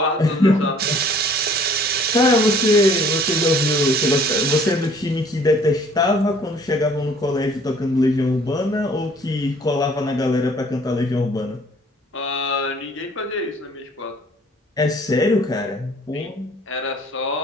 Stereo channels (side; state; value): both; normal; correlation 0.55